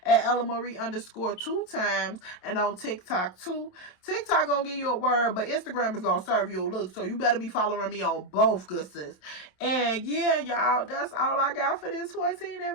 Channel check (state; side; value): late; right; 27 ms